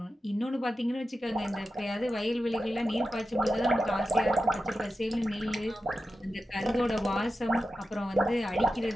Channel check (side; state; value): both; normal; correlation 0.91